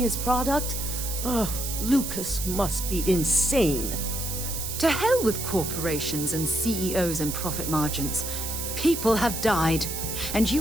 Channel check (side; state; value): right; noise; hiss, 5 dB below the sound